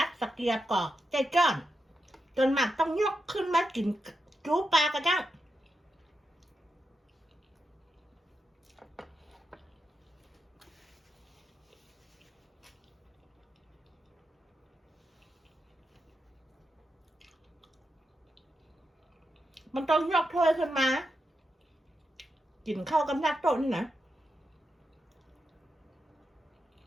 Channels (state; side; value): normal; both; correlation 0.87